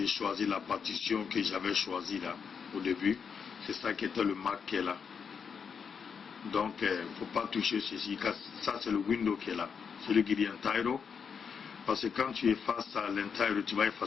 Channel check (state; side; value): quieter; right; 6.4 dB